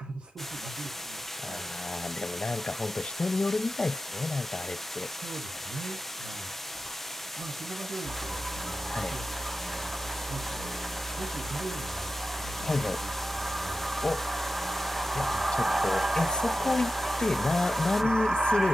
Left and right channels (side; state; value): both; normal; correlation 0.92